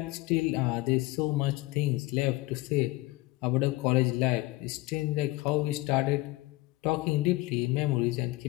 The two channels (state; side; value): quieter; right; 20.2 dB